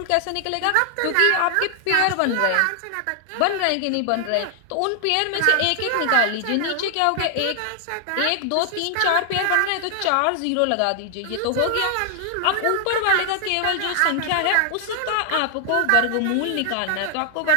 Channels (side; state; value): both; different; correlation 0.00